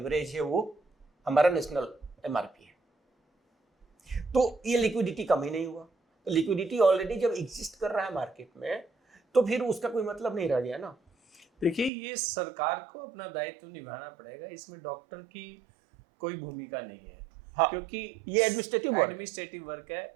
है वो हमारा नेशनल एमआरपी है। तो ये लिक्विडिटी कम ही नहीं हुआ। तो लिक्विडिटी ऑलरेडी जब एग्जिस्ट कर रहा है मार्केट में, तो फिर उसका कोई मतलब नहीं रह गया ना। देखिए, ये सरकार को अपना दायित्व निभाना पड़ेगा, इसमें डॉक्टर की कोई भूमिका नहीं है। हाँ, क्योंकि ये एडमिनिस्ट्रेटिव वर्क है।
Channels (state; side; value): drops out; left; at 11.9 s